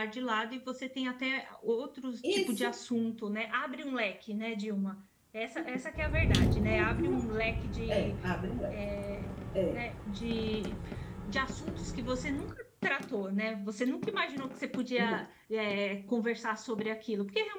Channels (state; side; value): identical; both; correlation 1.00